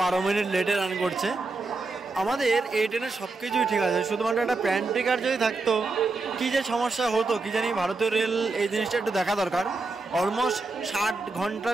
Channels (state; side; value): quieter; left; 3.6 dB